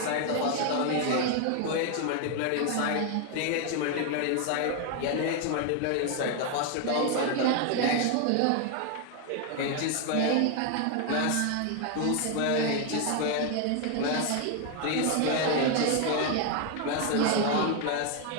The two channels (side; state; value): both; different; correlation 0.00